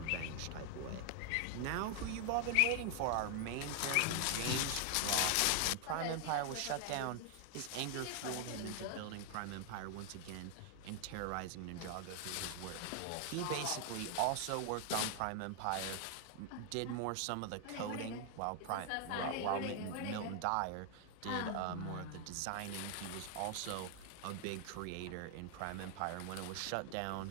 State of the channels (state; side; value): different; both; correlation 0.00